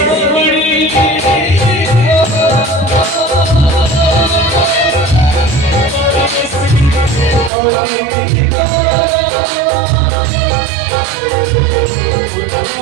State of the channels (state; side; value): drops out; left; at 7.5 s